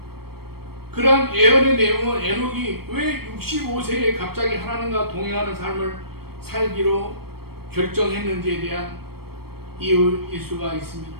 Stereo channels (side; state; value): left; late; 0.95 ms